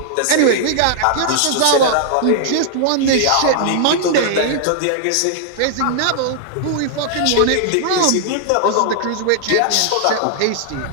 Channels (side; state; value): both; different; correlation -0.01